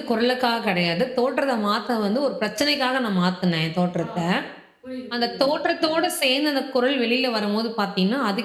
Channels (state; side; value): identical; both; correlation 1.00